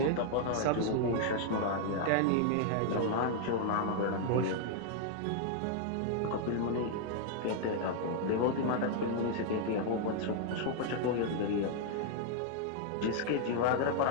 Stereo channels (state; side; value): different; both; correlation 0.00